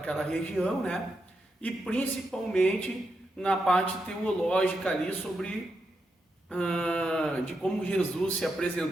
região, né? E principalmente na parte teológica ali sobre de como Jesus se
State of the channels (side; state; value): both; normal; correlation 0.85